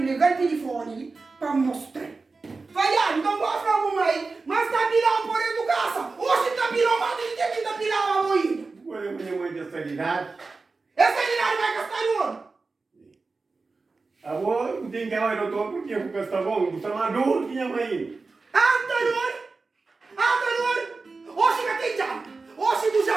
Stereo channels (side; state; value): left; quieter; 4.0 dB